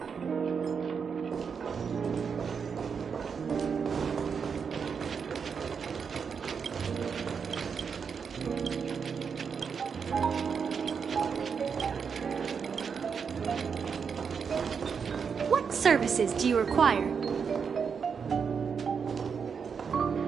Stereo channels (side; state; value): left; quieter; 6.2 dB